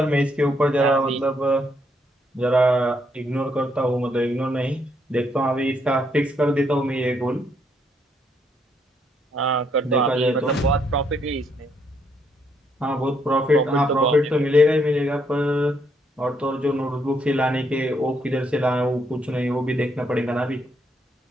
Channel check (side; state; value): both; normal; correlation 0.73